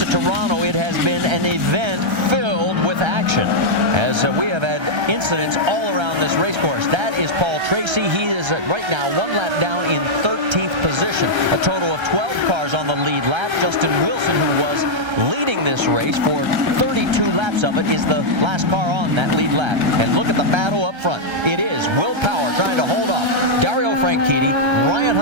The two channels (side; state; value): left; late; 1.3 ms